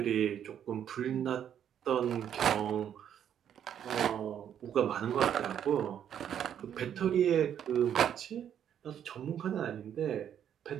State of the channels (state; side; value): quieter; left; 9.4 dB